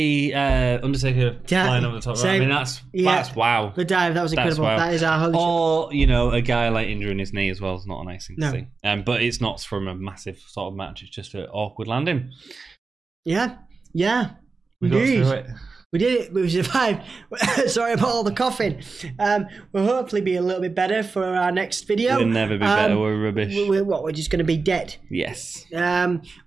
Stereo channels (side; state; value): left; quieter; 4.3 dB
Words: Undertaker flying over the top. Right? I mean, that's wow. The dive, that was incredible. Wow. That is our Holy Chip. Or, a guy like injuring his knee as well is not a nice thing to see. But it's not from a massive sort of match. It's just an awkward landing. Yeah. We got through it. We did it. We survived. Sorry about all the coughing. We'll hopefully be a little bit better for our next video. We'll never be better. We're rubbish. We're just going to be dead. Yes.